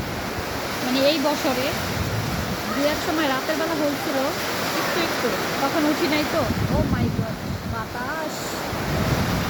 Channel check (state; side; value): identical; both; correlation 1.00